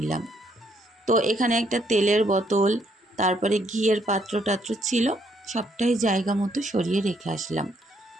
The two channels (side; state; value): both; normal; correlation 0.71